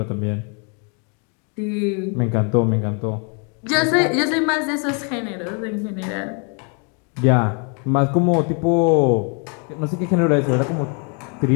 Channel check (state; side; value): quieter; right; 37.5 dB